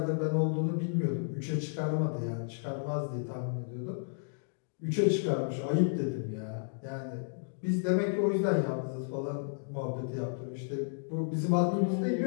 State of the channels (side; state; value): right; silent; digital silence